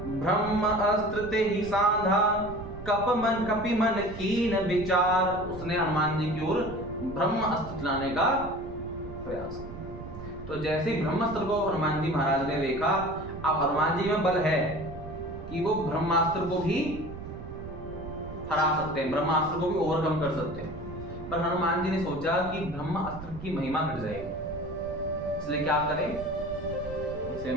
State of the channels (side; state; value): right; noise; rumble, 12 dB below the sound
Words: ब्रह्म अस्त्र ते ही साधा कपि मन कीन विचार। उसने हनुमान जी की ओर ब्रह्म अस्त्र चलाने का प्रयास किया। तो जैसे ही ब्रह्मास्त्र को हनुमान जी महाराज ने देखा, अब हनुमान जी में बल है कि वो ब्रह्मास्त्र को भी हरा सकते हैं, ब्रह्मास्त्र को भी ओवरकम कर सकते हैं। पर हनुमान जी ने सोचा कि ब्रह्मास्त्र की महिमा घट जाएगी, इसलिए क्या करें, इसे